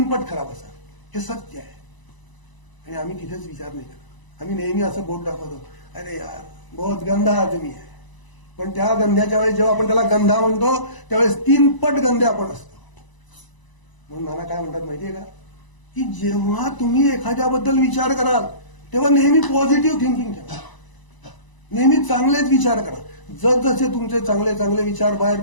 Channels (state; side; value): late; right; 1.0 ms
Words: पट खराब असाल. हे सत्य आहे. आणि आम्ही तिथेच विचार नाही करत. आम्ही नेहमी असं बोट दाखवतो, अरे यार बहुत गंधा आदमी आहे. पण त्या गंध्याच्या वेळेस जेव्हा आपण त्याला गंधा म्हणतो त्यावेळेस 3 पट गंधे आपण असतो. म्हणून नाना काय म्हणतात माहितीये का, की जेव्हा तुम्ही एखाद्याबद्दल विचार कराल तेव्हा नेहमी पॉझिटिव्ह थिंकिंग ठेवा. नेहमी चांगलेच विचार करा. जसजसे तुमचे चांगले चांगले विचार बाहेर